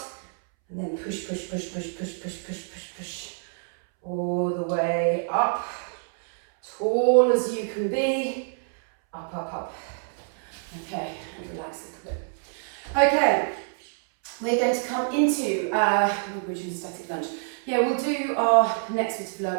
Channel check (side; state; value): left; silent; 61 dB below the other